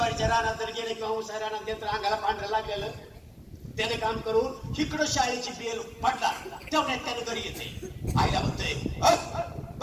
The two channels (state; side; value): identical; both; correlation 1.00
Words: रानात जर गेले किंवा उसा रानात गेलं तर अंगाला पांढरं लागलेलं. त्याने काम करून इकडं शाळेची बेल फाटला तेवढ्यात त्याने घरी येते. आईला म्हणतोय